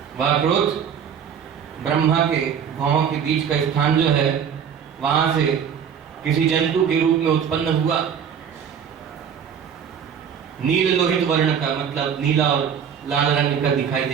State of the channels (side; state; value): left; quieter; 7.8 dB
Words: वह क्रोध ब्रह्मा के भौहों के बीच का स्थान जो है, वहां से किसी जंतु के रूप में उत्पन्न हुआ। नील लोहित वर्ण का, मतलब नीला और लाल रंग का दिखाई